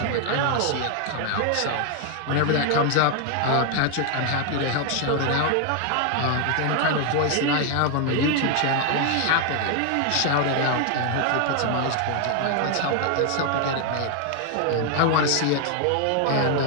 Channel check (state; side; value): different; both; correlation 0.00